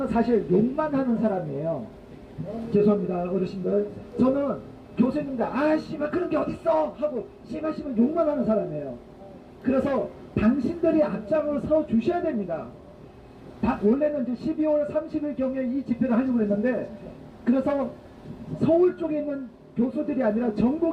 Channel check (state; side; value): identical; both; correlation 1.00